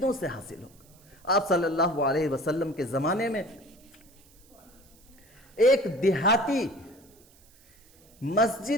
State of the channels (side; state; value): right; noise; hiss, 28 dB below the sound